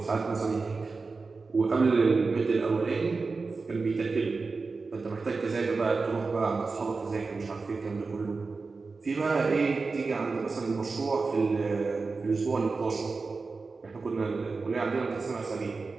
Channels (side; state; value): left; quieter; 4.2 dB